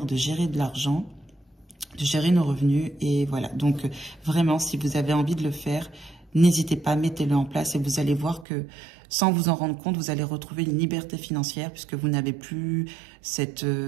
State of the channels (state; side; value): drops out; left; at 8.5 s